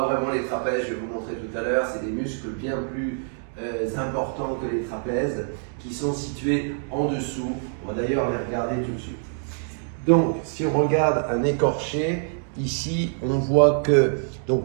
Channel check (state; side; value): silent; left; 62 dB below the other